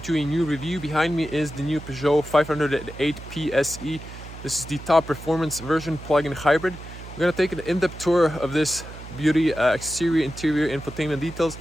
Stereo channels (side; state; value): right; noise; hum, 14 dB below the sound